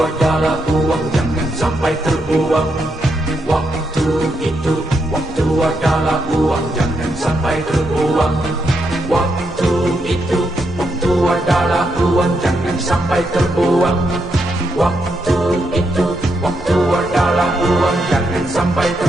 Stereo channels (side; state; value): both; normal; correlation 0.81